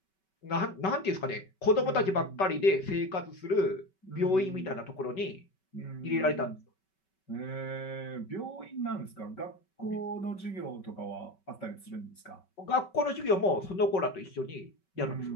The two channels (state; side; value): late; right; 5.2 ms